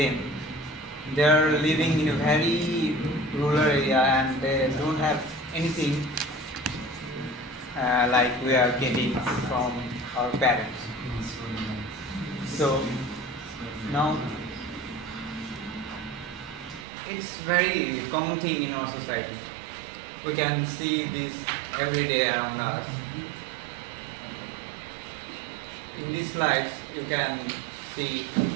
They are living in a very rural area and they don't have anything like we are getting from our parents. So now it's very common thing in our society. We can see this every day around us. In these slides, you can see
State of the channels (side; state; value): left; drops out; at 16.9 s